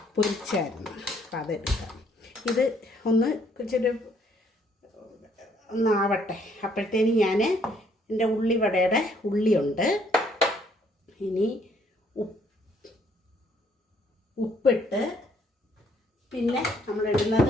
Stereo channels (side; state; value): both; normal; correlation 0.66